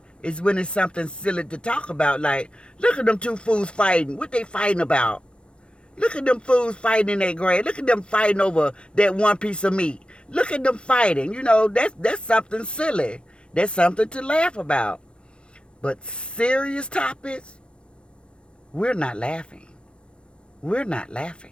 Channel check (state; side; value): late; right; 0.057 ms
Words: is when it's something silly to talk about. Like, look at them two fools fighting. What they fighting about? Look at them fools fighting in their grave. Look at them fighting over that one piece of meat. Look at them fighting. You know, that's something silly. That's something to laugh about. But serious topics, we're not laughing. We're not